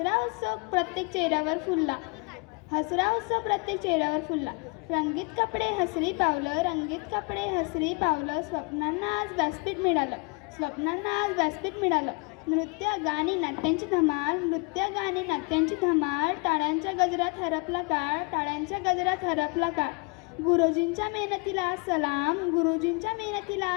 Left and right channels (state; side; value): quieter; right; 31.3 dB